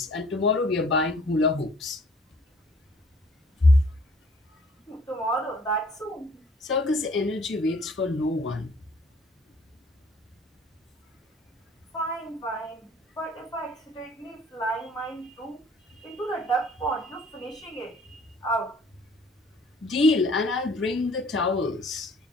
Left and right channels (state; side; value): normal; both; correlation 0.56